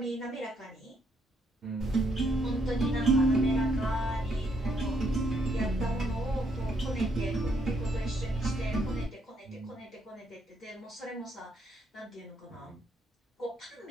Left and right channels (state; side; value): normal; both; correlation 0.73